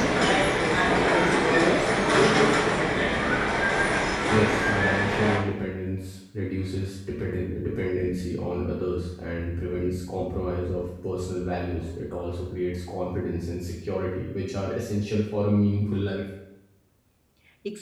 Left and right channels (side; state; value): both; identical; correlation 1.00